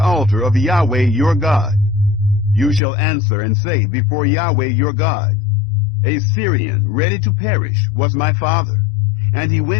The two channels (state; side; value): drops out; right; at 2.8 s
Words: altar of Yahweh your God. You shall answer and say before Yahweh your God, A Syrian ready to perish was my father, and he